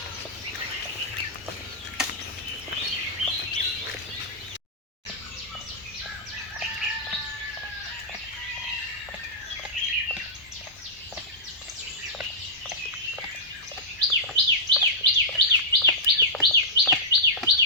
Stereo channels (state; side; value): normal; both; correlation -0.14